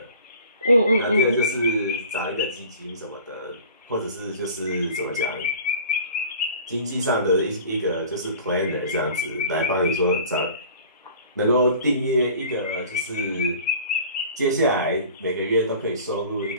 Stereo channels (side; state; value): both; inverted; correlation -0.44